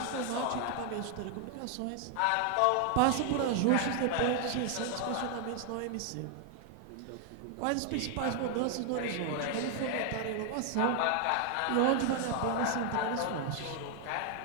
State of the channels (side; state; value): both; different; correlation 0.00